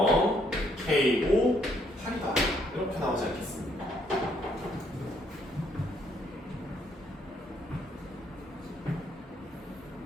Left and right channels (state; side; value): normal; both; correlation 0.70